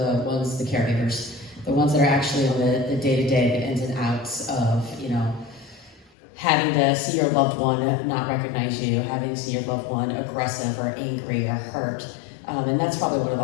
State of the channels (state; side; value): drops out; right; at 6.1 s